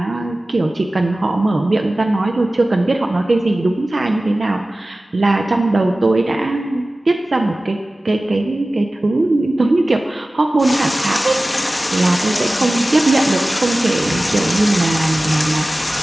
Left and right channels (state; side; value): normal; both; correlation 0.97